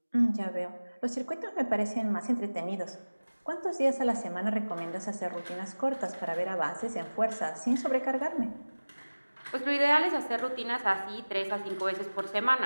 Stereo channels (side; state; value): both; inverted; correlation -1.00